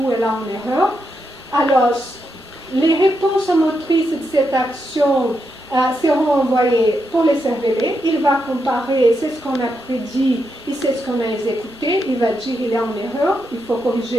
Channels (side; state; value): both; normal; correlation 0.83